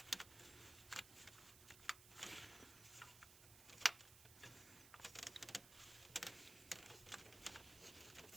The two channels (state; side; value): noise; right; hiss, 14 dB below the sound